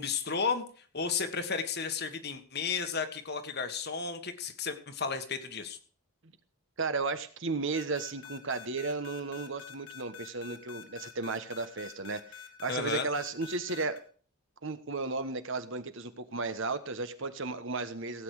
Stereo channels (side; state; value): both; normal; correlation -0.15